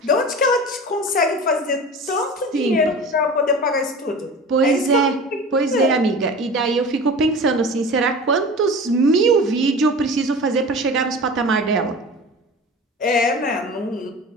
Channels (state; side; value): normal; both; correlation 0.35